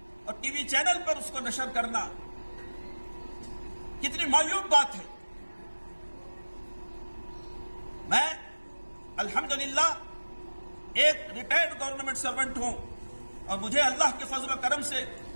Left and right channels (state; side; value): inverted; both; correlation -1.00